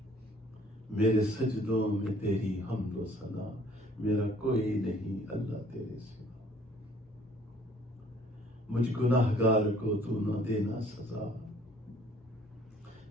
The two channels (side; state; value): both; normal; correlation 0.58